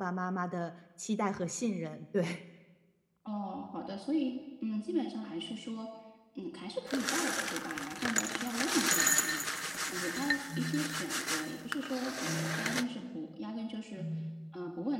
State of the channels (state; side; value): identical; both; correlation 1.00